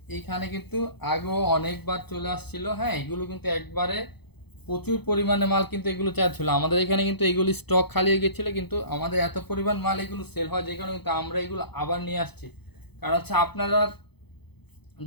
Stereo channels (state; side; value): late; right; 0.98 ms